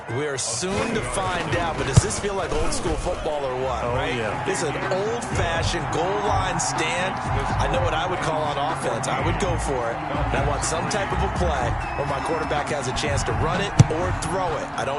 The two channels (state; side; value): identical; both; correlation 1.00